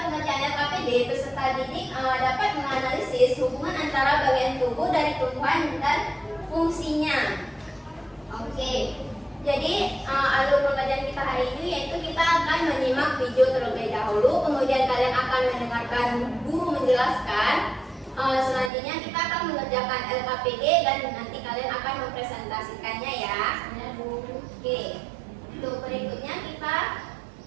pengerjaan LKPD, peserta didik dapat menganalisis hubungan antara bagian tubuh dari tumbuhan dan fungsinya. Oke, jadi alur pengajian kita hari ini yaitu kita akan menyimak video terlebih dahulu, kemudian kalian akan mendengarkan guru menjelaskan. Selanjutnya kita akan mengerjakan LKPD dan nanti kalian akan mempresentasikannya ya. Oke, untuk berikutnya kita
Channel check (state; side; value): drops out; left; at 18.7 s